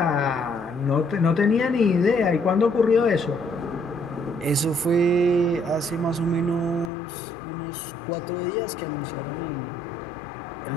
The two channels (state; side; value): drops out; right; at 6.9 s